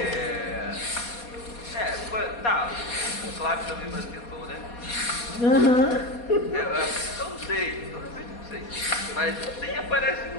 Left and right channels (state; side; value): late; right; 4.2 ms